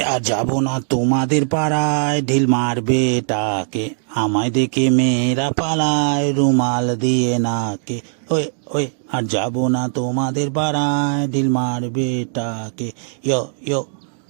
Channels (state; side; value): silent; left; digital silence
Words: আর যাবো না তোমাদের পাড়ায়, ঢিল মারবে টাকে, আমায় দেখে মেয়েরা পালায় রুমাল দিয়ে নাকে। ওই ওই আর যাবো না তোমাদের পাড়ায়, ঢিল মারবে টাকে। ইয়ো ইয়ো।